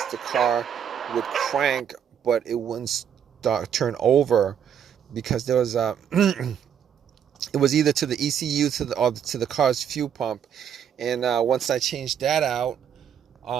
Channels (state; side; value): quieter; left; 8.6 dB